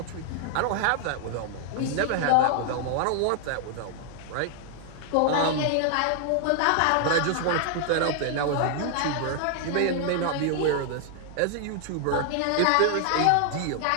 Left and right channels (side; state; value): both; different; correlation 0.00